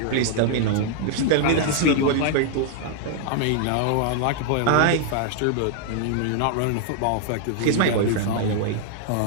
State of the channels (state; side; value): different; both; correlation 0.00